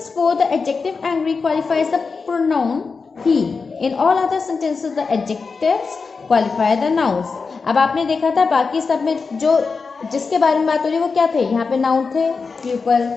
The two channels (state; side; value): quieter; right; 4.7 dB